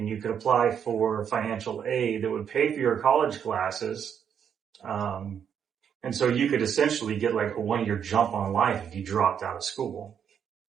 you could apply for financial aid that would pay for your college classes. And so you could essentially get like a 1-year jump on life if you dropped out of school.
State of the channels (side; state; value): left; quieter; 8.1 dB